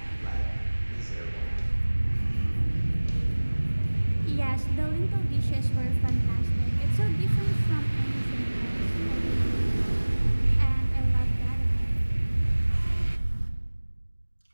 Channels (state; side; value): inverted; both; correlation -1.00